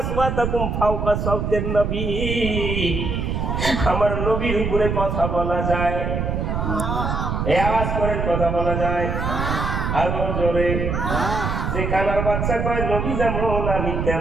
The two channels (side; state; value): right; noise; rumble, 1 dB below the sound